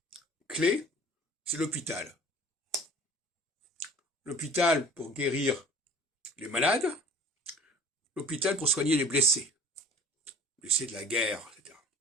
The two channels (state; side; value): normal; both; correlation 0.45